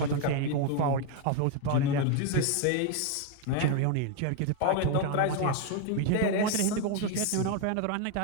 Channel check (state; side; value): different; both; correlation 0.01